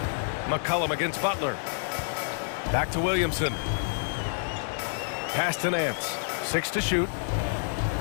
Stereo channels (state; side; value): silent; right; digital silence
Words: McCollum against Butler. Back to Williamson. Pass to Nance. 6 to shoot.